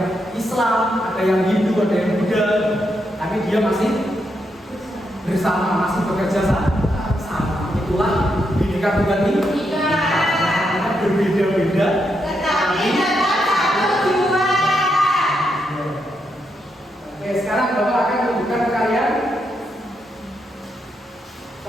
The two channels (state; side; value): normal; both; correlation 0.81